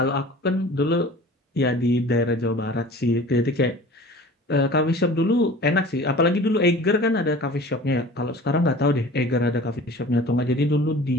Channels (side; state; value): both; normal; correlation 0.43